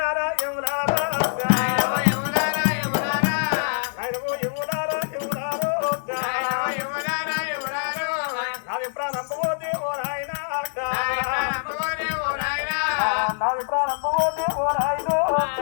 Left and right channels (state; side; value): silent; right; 58 dB below the other